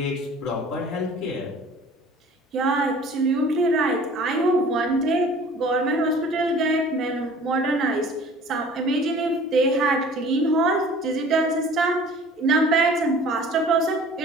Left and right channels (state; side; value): normal; both; correlation 0.47